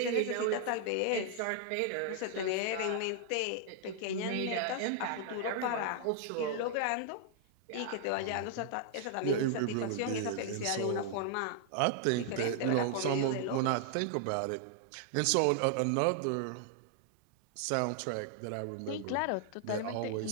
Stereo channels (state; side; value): different; both; correlation 0.00